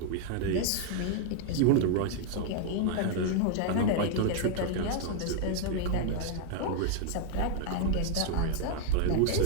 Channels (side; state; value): both; different; correlation 0.00